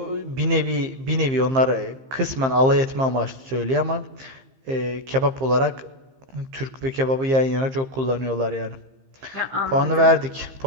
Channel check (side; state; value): left; late; 15 ms